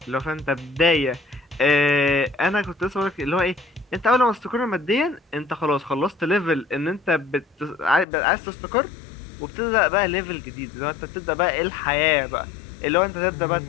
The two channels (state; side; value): drops out; right; at 8.1 s